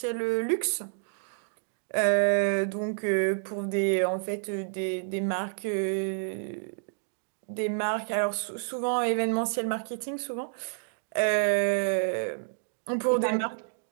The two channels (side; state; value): left; silent; digital silence